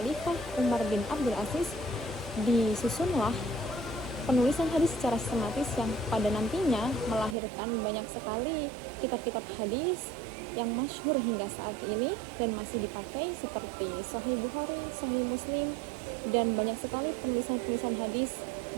Umar bin Abdul Aziz disusunlah penulisan hadis secara sistematis yang pada nantinya melahirkan banyak sekali kitab-kitab hadis yang masyhur hingga saat ini dan masih dipakai seperti Sahih Bukhari, Sahih Muslim, dan banyak sekali penulisan-penulisan hadis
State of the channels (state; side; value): drops out; left; at 7.4 s